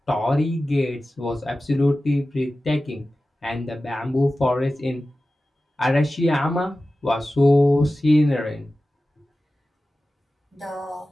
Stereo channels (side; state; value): both; normal; correlation 0.95